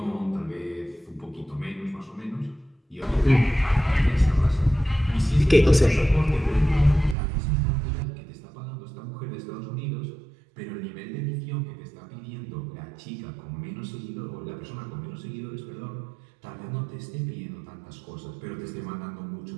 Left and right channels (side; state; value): left; drops out; at 7.2 s